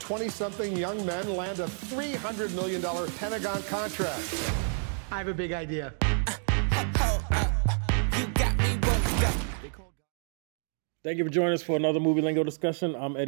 young men land a $300 million Pentagon contract? I have a big idea. Thank you for joining us for another Movie Lingo discussion. I'm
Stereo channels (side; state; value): left; silent; 59 dB below the other